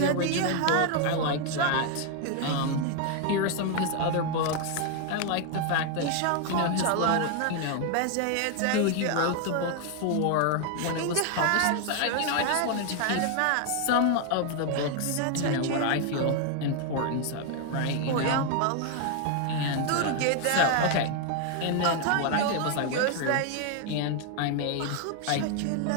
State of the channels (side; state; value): both; different; correlation 0.01